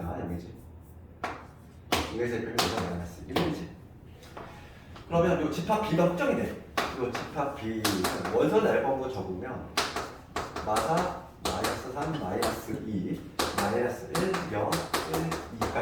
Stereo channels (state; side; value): identical; both; correlation 1.00